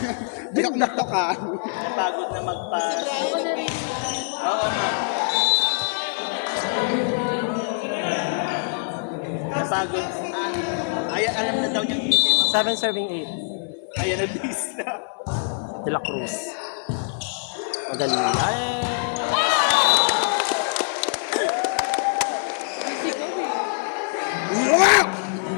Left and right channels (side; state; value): right; silent; 63 dB below the other